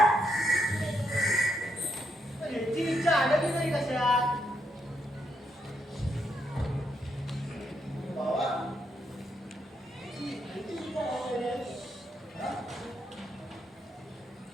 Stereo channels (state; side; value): normal; both; correlation 0.78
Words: याची इच्छा आडली नाही कशात बाबा